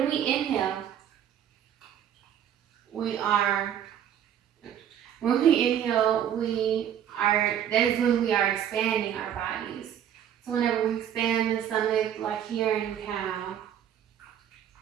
we inhale, that is when we are expanding our bodies. So whenever we expand the stomach, like here in cow,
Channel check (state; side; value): quieter; left; 9.7 dB